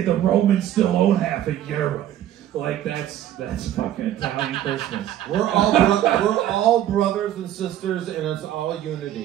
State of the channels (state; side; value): quieter; left; 11.9 dB